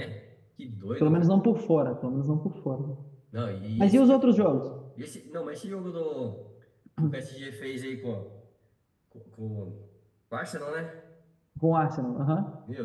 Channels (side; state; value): both; identical; correlation 1.00